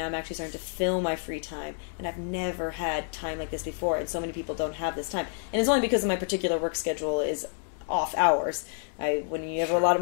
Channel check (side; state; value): right; silent; 59 dB below the other